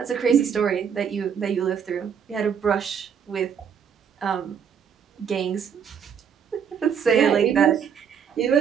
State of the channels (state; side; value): quieter; left; 7.5 dB